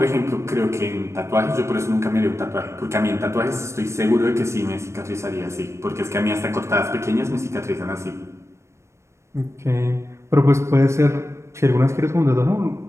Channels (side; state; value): left; late; 0.13 ms